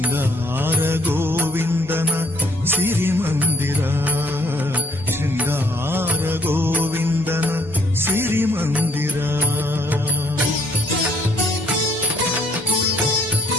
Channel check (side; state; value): both; normal; correlation 0.64